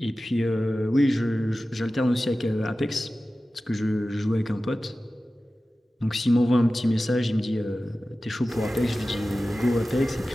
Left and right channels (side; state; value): both; normal; correlation 0.95